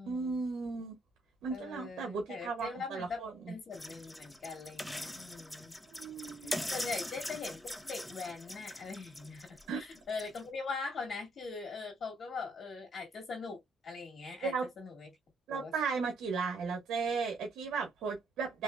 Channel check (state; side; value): normal; both; correlation 0.70